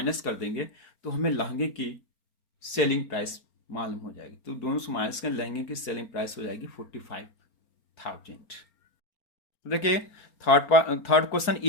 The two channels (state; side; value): late; right; 4.4 ms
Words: कर देंगे तो हमें लहंगे की सेलिंग प्राइस मालूम हो जाएगी। तो दोनों से माइनस कर लहंगे की सेलिंग प्राइस हो जाएगी 45,000। देखिए third question,